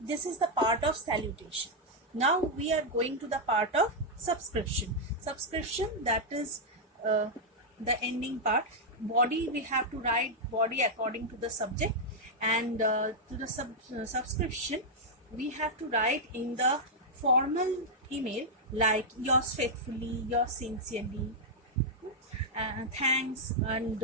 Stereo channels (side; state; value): both; normal; correlation -0.04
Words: is the part of salutation. Now we are going to the part of subscription. That is the ending part. Body, we have to write body according to the subject, and to the subscription we have to write in the formal email like yours faithfully, yours sincerely, thanks, and